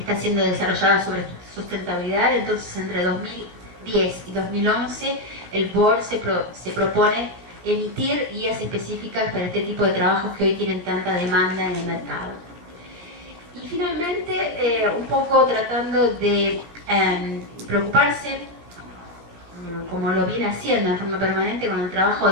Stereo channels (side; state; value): left; late; 17 ms